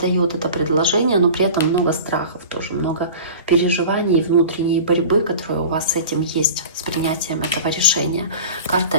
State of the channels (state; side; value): inverted; both; correlation -0.37